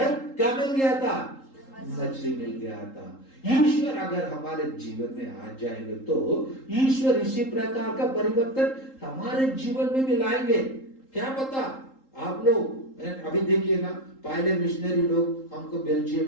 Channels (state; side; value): late; right; 3.8 ms